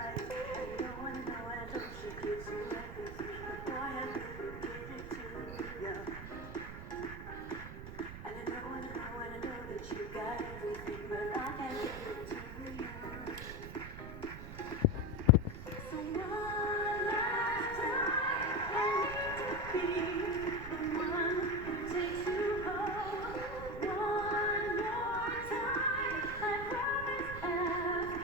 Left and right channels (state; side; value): noise; right; rumble, 10 dB below the sound